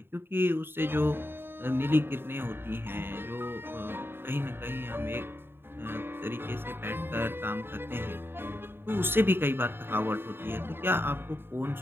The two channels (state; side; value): late; left; 0.11 ms